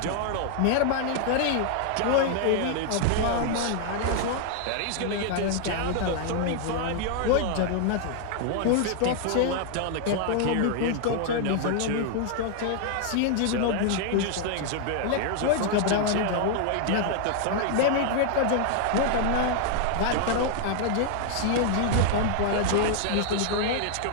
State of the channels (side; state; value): both; different; correlation 0.00